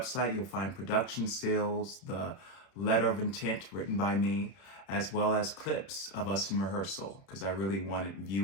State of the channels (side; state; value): right; late; 31 ms